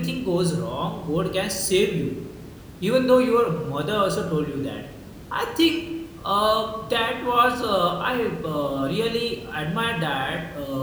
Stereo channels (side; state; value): both; identical; correlation 1.00